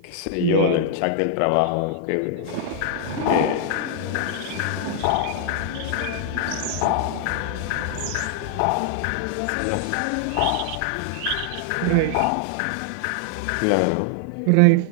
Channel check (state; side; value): different; both; correlation 0.00